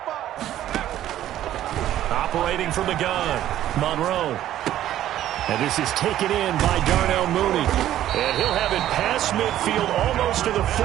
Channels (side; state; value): left; quieter; 12.5 dB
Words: Operating from the gun, Monroe. And this is taken in by Darnell Mooney. And he'll have it past midfield almost to the